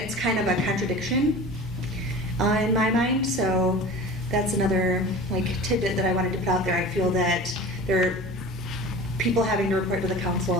kind of a contradiction in my mind, so that's another tidbit that I wanted to put out there. I feel that there are people having to report to the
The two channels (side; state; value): both; normal; correlation 0.37